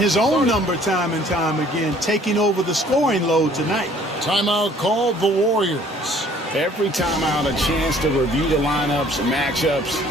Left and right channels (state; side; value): normal; both; correlation 0.57